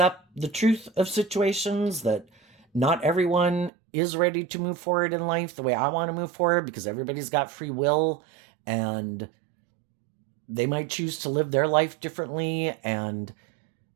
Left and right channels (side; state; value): left; drops out; at 3.7 s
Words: the truth of situations, that not everyone is ready to move forward in life the way I want to move forward, because everybody's got free will and they might choose to live their life differently. And